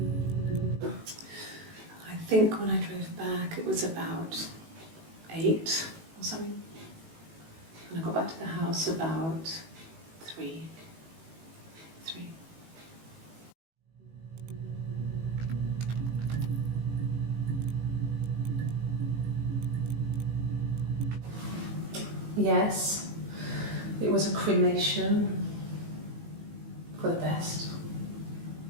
I think when I drove back it was about 8 or something, and I got back to the house about 3. Yes, it was a cremation for the best.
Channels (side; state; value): left; late; 18 ms